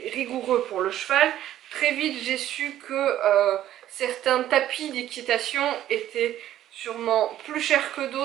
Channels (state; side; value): quieter; left; 12.5 dB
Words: rigoureux pour le cheval. Très vite, j'ai su que certains tapis d'équitation étaient sûrement plus chers que